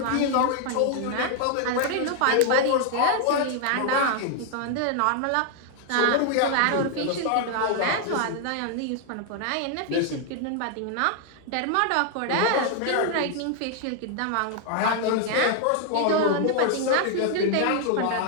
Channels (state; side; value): different; both; correlation 0.00